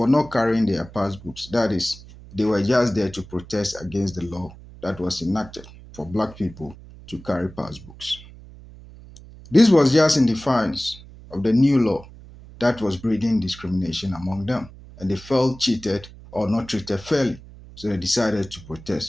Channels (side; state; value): right; noise; hum, 19 dB below the sound